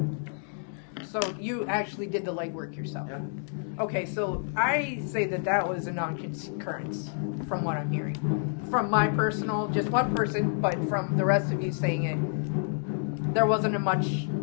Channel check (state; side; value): silent; right; 59 dB below the other